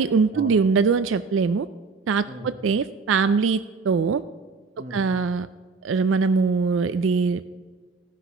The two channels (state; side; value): quieter; left; 4.6 dB